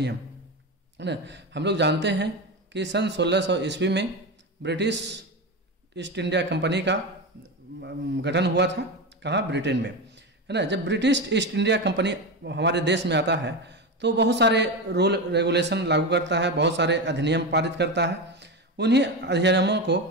है ना। हम लोग जानते हैं कि सन 1600 ईस्वी में ब्रिटिश ईस्ट इंडिया कंपनी का गठन हुआ था। कहाँ? ब्रिटेन में, है ना। जब ब्रिटिश ईस्ट इंडिया कंपनी हमारे देश में आता है तो बहुत सारे रूल रेगुलेशन लागू करता है, बहुत सारे अधिनियम पारित करता है। उन्हीं अधिनियमों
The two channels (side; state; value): both; normal; correlation 0.19